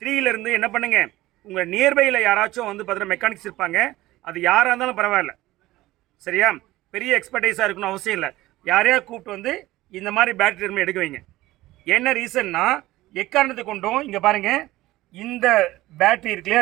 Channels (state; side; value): quieter; left; 17.3 dB